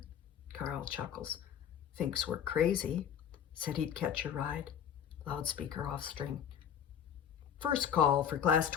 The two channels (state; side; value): quieter; right; 8.7 dB